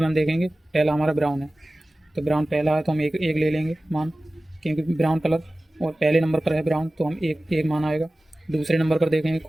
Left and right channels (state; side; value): normal; both; correlation 0.97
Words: हम देखेंगे, पहला हमारा ब्राउन है, तो ब्राउन पहला है, तो हम एक ले लेंगे मान, क्योंकि ब्राउन कलर और पहले नंबर पर है ब्राउन, तो हम एक मान आएगा। दूसरे नंबर पर देखेंगे